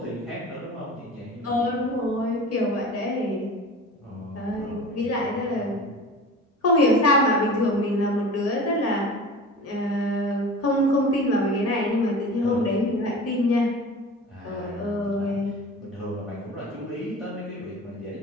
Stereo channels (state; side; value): normal; both; correlation 0.37